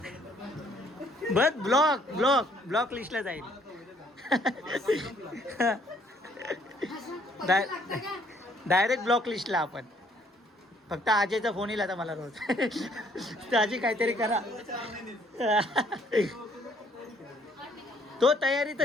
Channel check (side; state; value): both; normal; correlation 0.64